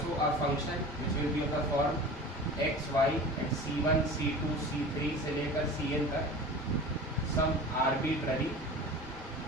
a function which will be of the form x y at c1 c2 c3 से लेकर cn तक सम आर्बिट्ररी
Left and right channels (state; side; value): normal; both; correlation 0.36